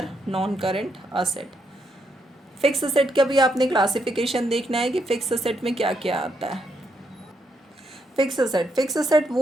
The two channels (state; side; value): normal; both; correlation 0.78